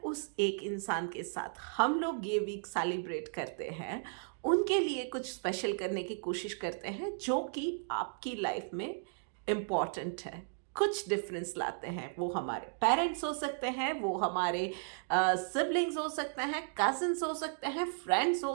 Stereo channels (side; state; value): left; silent; digital silence